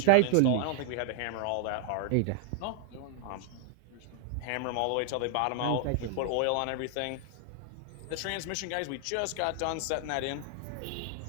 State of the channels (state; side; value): different; both; correlation 0.00